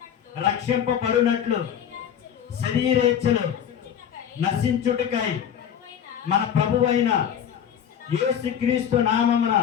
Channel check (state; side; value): quieter; right; 8.9 dB